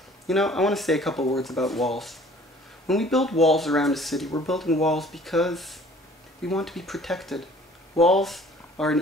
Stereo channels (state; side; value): normal; both; correlation 0.52